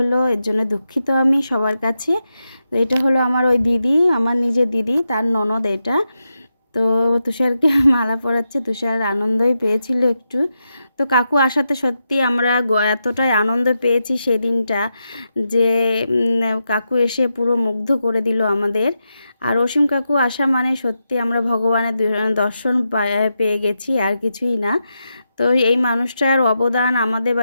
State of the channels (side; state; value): both; inverted; correlation -0.87